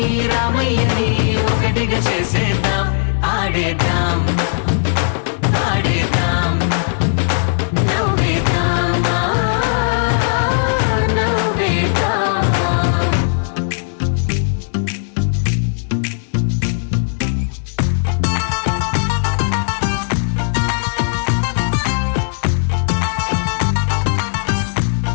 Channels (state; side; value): silent; right; 67 dB below the other